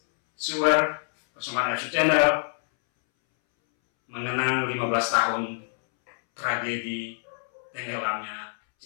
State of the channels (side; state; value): right; silent; 61 dB below the other